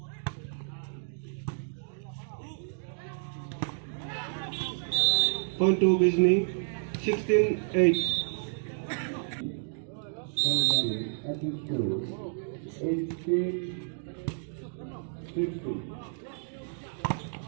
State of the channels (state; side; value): silent; left; digital silence